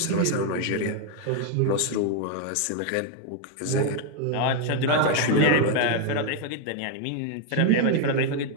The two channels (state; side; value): different; both; correlation 0.01